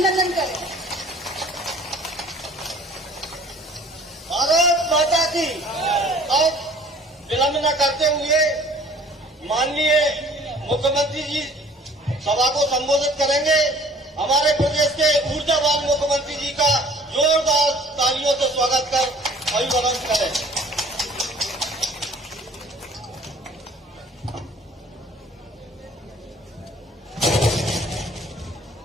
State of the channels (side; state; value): both; normal; correlation 0.52